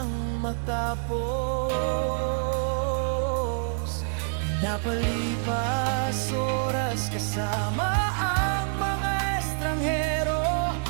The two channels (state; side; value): silent; left; digital silence